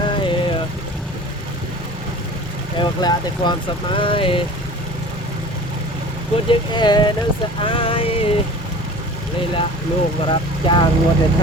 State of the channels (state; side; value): normal; both; correlation 0.41